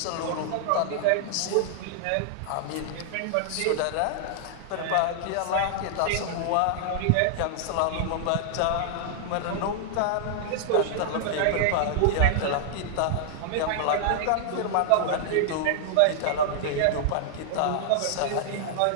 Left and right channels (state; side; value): different; both; correlation -0.01